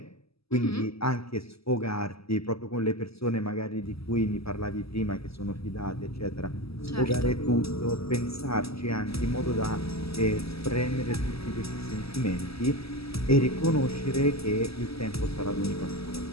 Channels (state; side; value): late; right; 0.77 ms